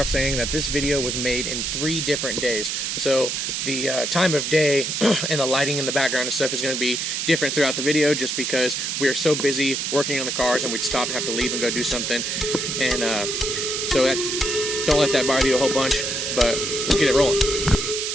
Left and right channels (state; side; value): noise; right; hiss, 1 dB below the sound